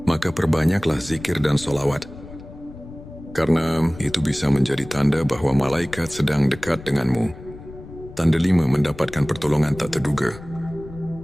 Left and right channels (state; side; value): noise; left; rumble, 16 dB below the sound